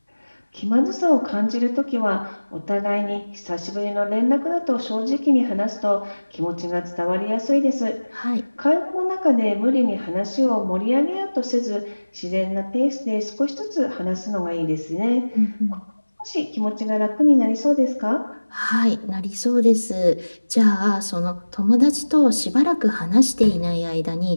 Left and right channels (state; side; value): inverted; both; correlation -1.00